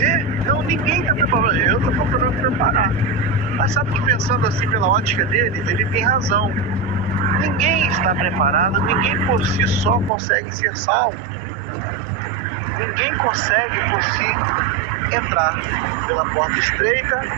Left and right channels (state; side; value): drops out; left; at 10.1 s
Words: Não, ninguém tá preparado, eu tô procurando me preparar. Mas sabe que pensando assim pela ótica dele, ele tem razão. Ninguém está preparado, ninguém por si só consegue ser salvo. Ninguém consegue por si entrar pela porta estreita,